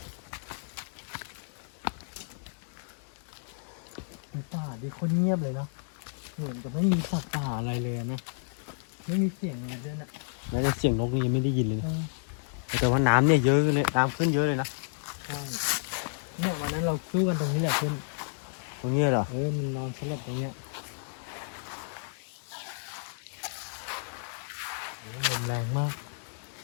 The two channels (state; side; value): silent; right; 57 dB below the other